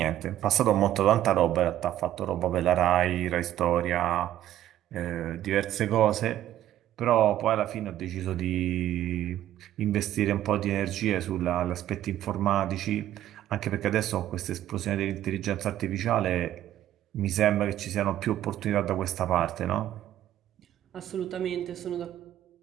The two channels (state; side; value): quieter; left; 12.5 dB